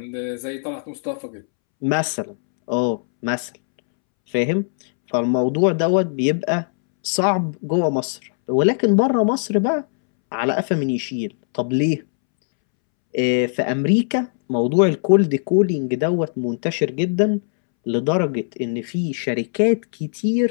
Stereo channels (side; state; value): right; silent; 65 dB below the other